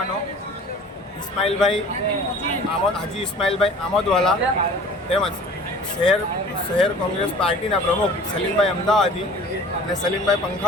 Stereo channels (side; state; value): both; normal; correlation 0.45